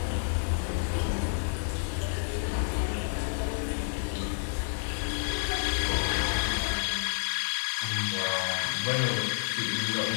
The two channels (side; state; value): right; silent; digital silence